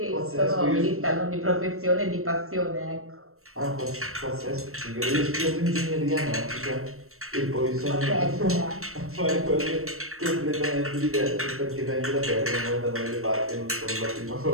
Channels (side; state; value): left; late; 0.63 ms